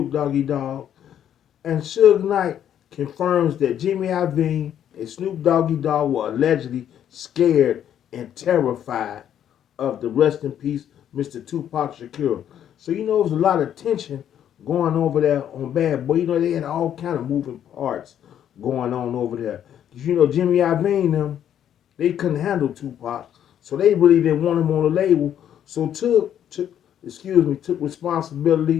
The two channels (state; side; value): quieter; right; 10.0 dB